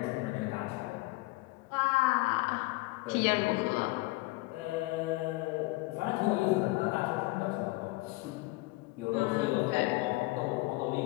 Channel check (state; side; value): quieter; right; 22.2 dB